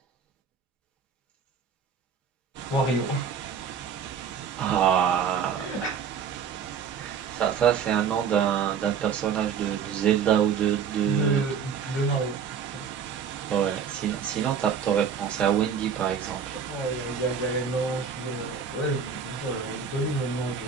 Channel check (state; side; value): quieter; left; 6.9 dB